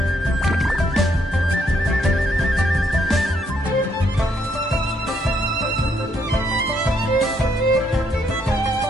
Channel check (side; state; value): both; normal; correlation 0.73